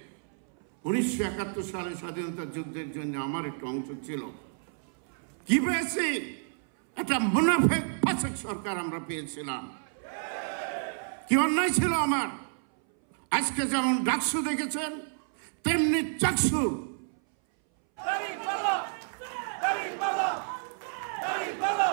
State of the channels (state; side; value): silent; left; 58 dB below the other